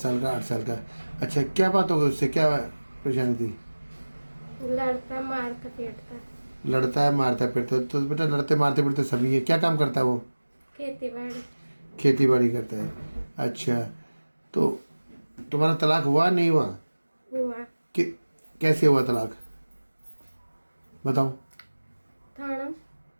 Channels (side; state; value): both; inverted; correlation -1.00